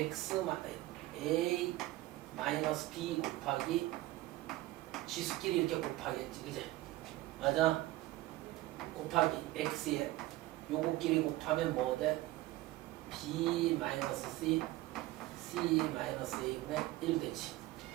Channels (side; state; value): left; quieter; 17.4 dB